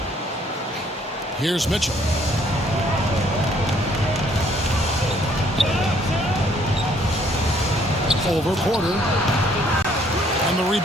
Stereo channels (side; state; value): both; normal; correlation 0.64